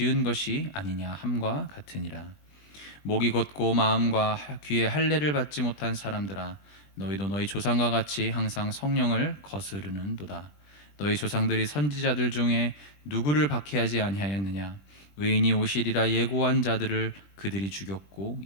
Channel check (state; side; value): late; right; 20 ms